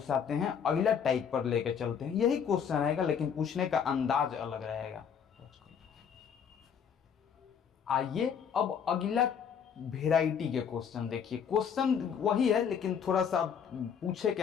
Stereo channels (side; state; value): right; quieter; 7.4 dB